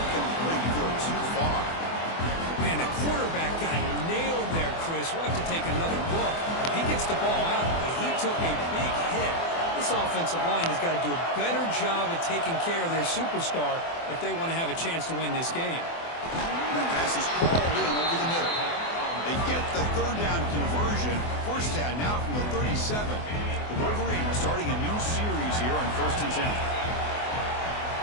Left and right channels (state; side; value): late; right; 24 ms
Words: Go too far. Man, the quarterback got nailed there, Chris. We'll have to take another look. He gets the ball out, but he took a big hit. This offensive line has got to do a better job at taking care of their superstar if they want to have a chance to win this game. That pass is hauled in over the middle. They get the 3rd down conversion. 1st down now from the 37. The Wolverines starting a new series here on 1st and 10.